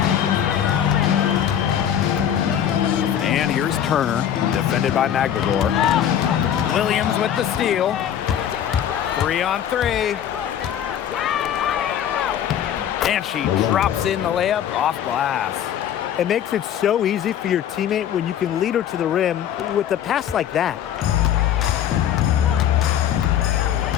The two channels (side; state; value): right; quieter; 9.9 dB